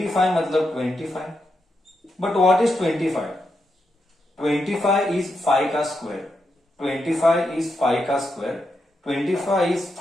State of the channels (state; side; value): normal; both; correlation 0.84